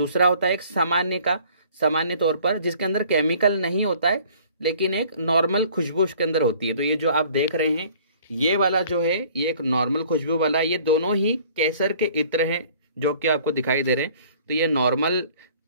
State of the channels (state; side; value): inverted; both; correlation -0.53